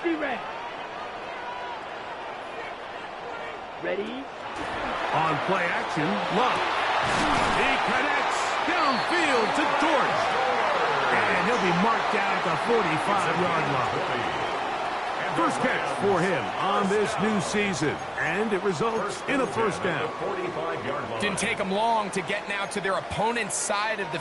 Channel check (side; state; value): both; identical; correlation 1.00